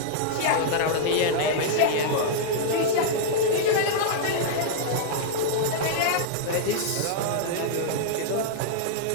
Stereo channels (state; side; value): different; both; correlation -0.02